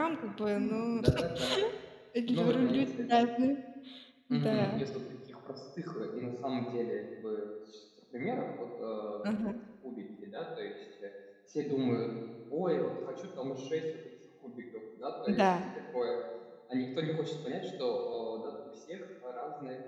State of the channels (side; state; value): both; identical; correlation 1.00